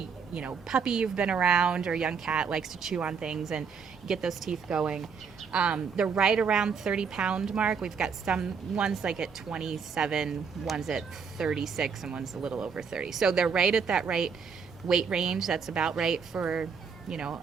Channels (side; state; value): left; quieter; 6.0 dB